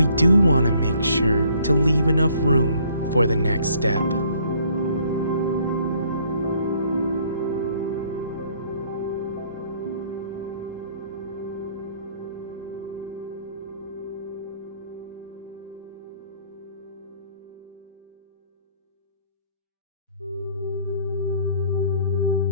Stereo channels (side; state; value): both; inverted; correlation -0.62